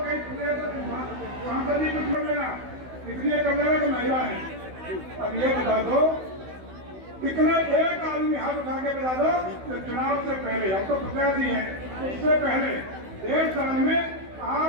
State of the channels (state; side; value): late; left; 16 ms